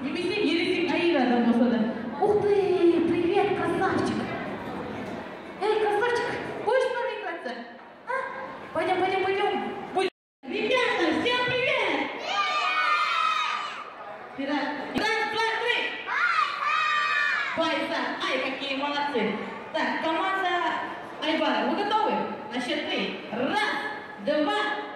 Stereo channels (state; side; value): identical; both; correlation 1.00